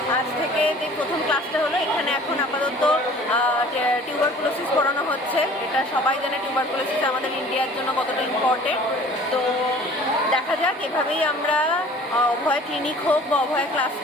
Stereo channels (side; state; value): both; normal; correlation 0.48